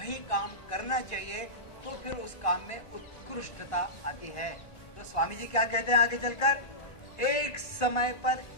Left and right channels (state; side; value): late; right; 1.5 ms